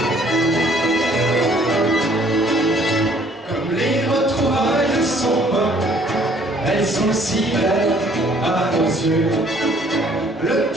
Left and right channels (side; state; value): both; normal; correlation 0.59